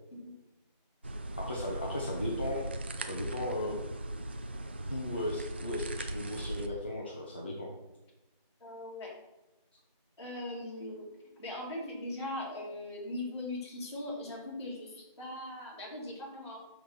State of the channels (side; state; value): both; inverted; correlation -0.54